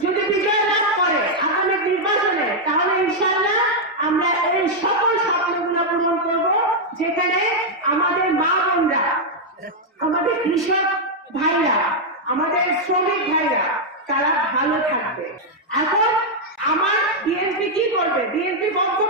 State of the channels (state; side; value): normal; both; correlation -0.02